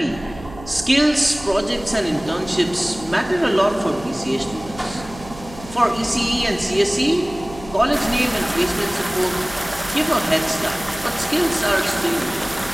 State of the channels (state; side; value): noise; right; hum, 16 dB below the sound